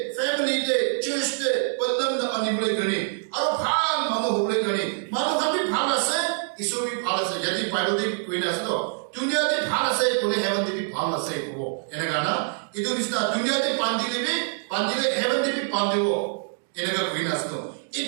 फैमिली ते चर्च ते बंधन द अनिबले गणे और फाल मानो बोले गणे मानो कभी फाल से ईश्वर भी फाल से यदि बाइबल दे कोई ना तो दुनिया दे फाल से कोने हेवन दे भी फाल से को इनका ना itu bisa dunia di pandile heaven di pandiwo enega greenasto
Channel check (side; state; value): left; silent; digital silence